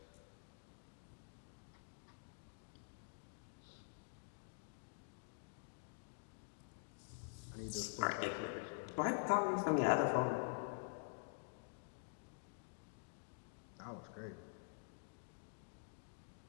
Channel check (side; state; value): right; silent; digital silence